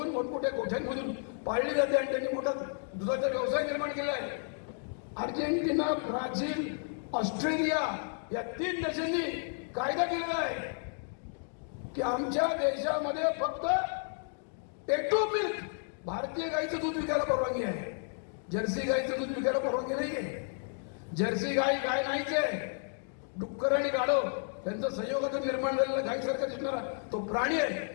मोठमोठ्या गोठ्यांमधून पाळली जाते आणि त्यांनी मोठा दुधाचा व्यवसाय निर्माण केला आहे. अर्जेंटिना, ब्राझील, ऑस्ट्रेलिया या 3 देशांनी कायदा केलेला आहे की आमच्या देशामध्ये फक्त टेटो मिल्क, भारतीय गाईचं दूध विकायला परवानगी आहे. जर्सी गाईचं दूध विकायला परवानगी नाही आहे. जर्सी गाय नाहीच आहे. डुक्कर आणि गाढव त्यांचं संयोगातून निर्माण झालेला गायीसारखा दिसणारा तो प्राणी आहे.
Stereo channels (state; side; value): silent; right; 56 dB below the other